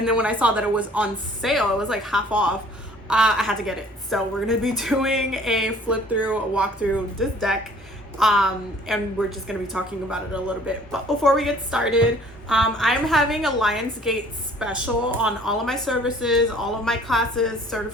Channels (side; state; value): both; normal; correlation 0.54